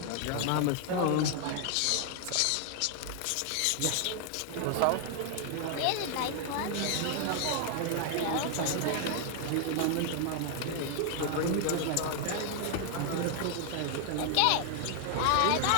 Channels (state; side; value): different; both; correlation 0.00